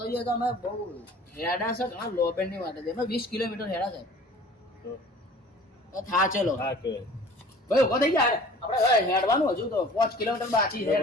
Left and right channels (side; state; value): both; normal; correlation 0.47